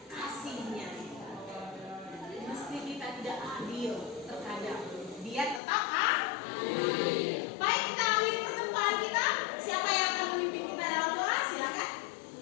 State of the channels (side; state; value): right; drops out; at 5.6 s